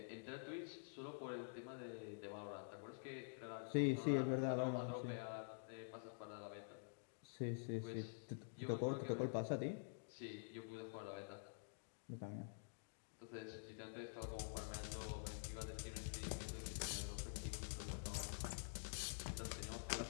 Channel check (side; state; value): right; silent; digital silence